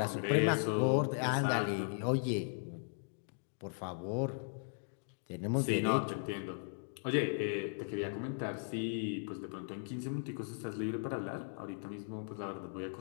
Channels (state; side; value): silent; right; digital silence